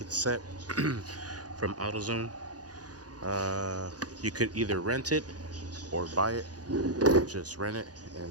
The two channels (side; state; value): left; late; 0.68 ms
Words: set from AutoZone. You could either rent it or buy it. Just rent it